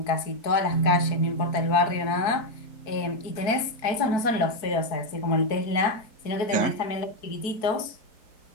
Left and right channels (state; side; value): late; right; 4.6 ms